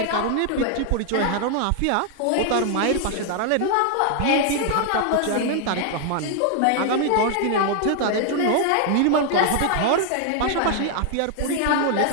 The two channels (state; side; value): different; both; correlation 0.00